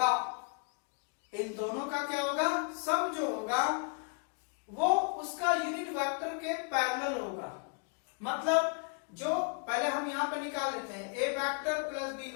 इन दोनों का क्या होगा, सम जो होगा वो उसका यूनिट वेक्टर के पैरेलल होगा। मतलब जो पहले हम यहाँ पे निकाल लेते हैं ए वेक्टर प्लस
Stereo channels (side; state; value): right; quieter; 39.8 dB